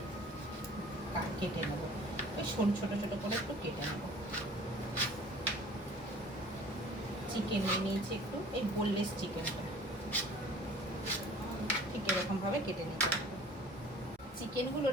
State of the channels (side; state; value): both; normal; correlation 0.48